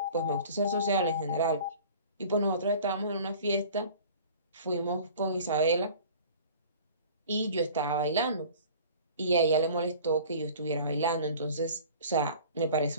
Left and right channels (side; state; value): both; inverted; correlation -0.44